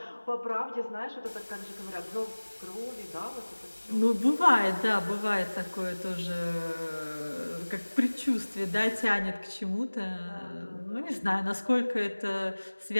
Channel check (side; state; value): both; inverted; correlation -1.00